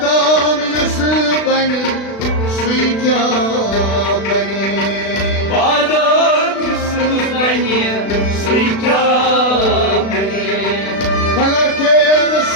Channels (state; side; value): late; right; 36 ms